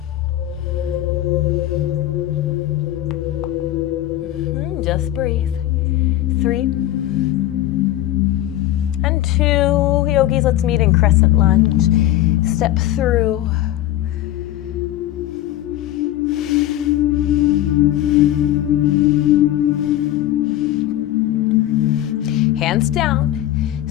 Just breathe. 3 and 2. Yogis, let's meet in Crescent Lunge. Step through. Hands down.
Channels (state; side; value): quieter; right; 13.7 dB